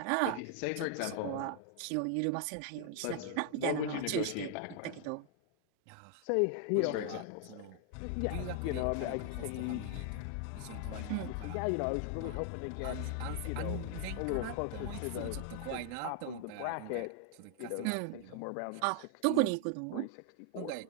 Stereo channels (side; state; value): both; different; correlation 0.00